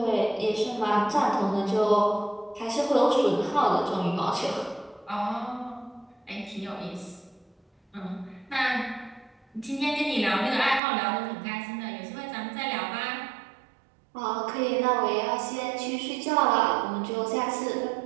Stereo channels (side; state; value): left; drops out; at 10.8 s